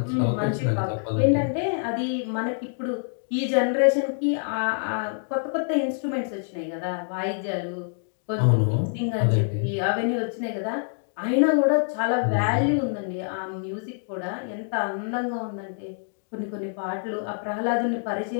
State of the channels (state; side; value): silent; right; digital silence